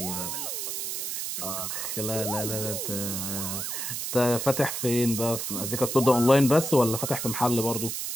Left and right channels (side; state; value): right; noise; hiss, 3 dB below the sound